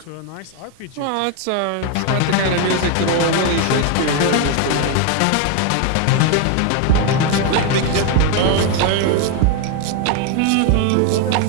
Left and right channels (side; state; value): both; different; correlation 0.01